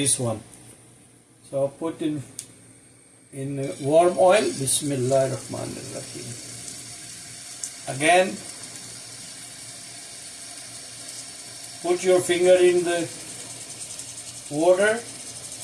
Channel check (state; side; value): identical; both; correlation 1.00